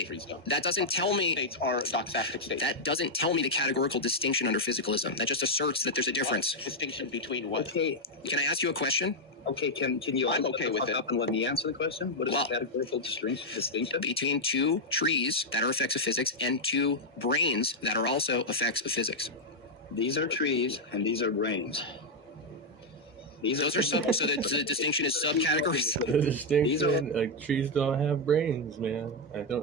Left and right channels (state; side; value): normal; both; correlation -0.01